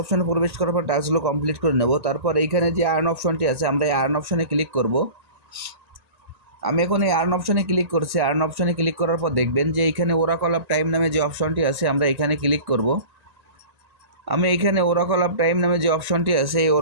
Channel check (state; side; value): late; left; 1.9 ms